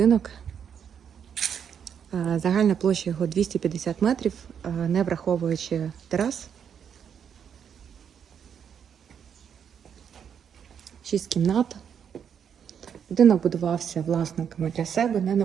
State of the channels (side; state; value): left; quieter; 7.9 dB